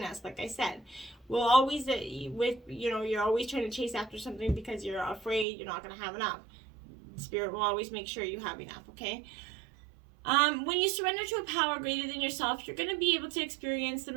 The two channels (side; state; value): left; drops out; at 5.5 s